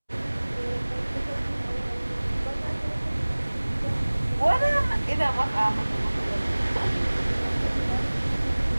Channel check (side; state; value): both; inverted; correlation -1.00